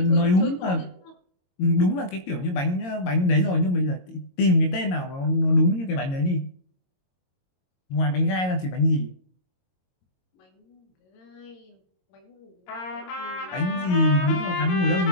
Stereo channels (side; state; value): right; late; 22 ms